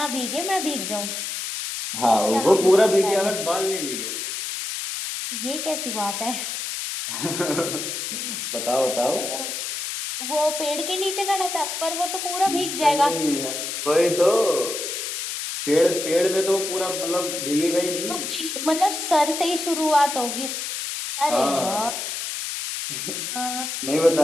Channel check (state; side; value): noise; left; hiss, 4 dB below the sound